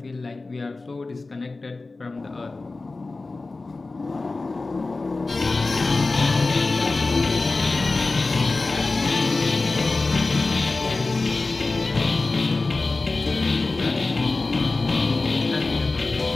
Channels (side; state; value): right; quieter; 3.5 dB